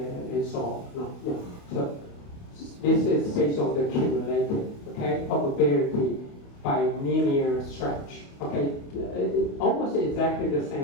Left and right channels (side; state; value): right; late; 28 ms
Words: and so on. No. So this is based on the cumulative, okay, probability by linear stretch. Okay, almost exactly the